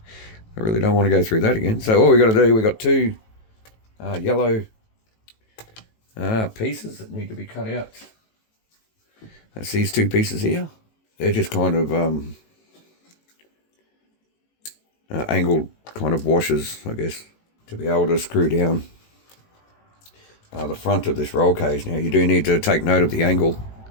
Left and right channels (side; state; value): right; late; 18 ms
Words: really don't want to go through that again. So all we got to do, we got two yellow pieces that need to be cut out. That's these two pieces here. They're just kind of angled kind of washers, I guess, to be able to screw down the front of this roll cage. Now you do need to take note of the angle